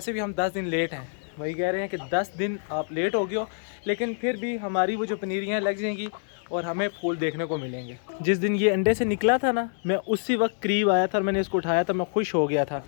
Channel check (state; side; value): silent; right; digital silence